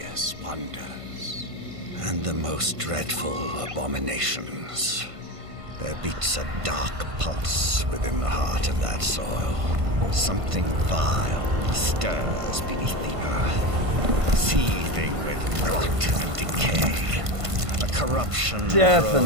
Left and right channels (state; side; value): late; left; 1.5 ms